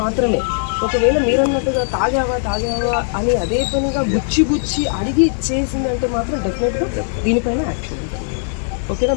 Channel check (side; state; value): right; silent; digital silence